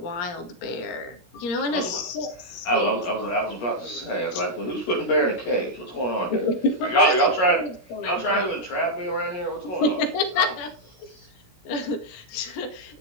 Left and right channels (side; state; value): right; late; 16 ms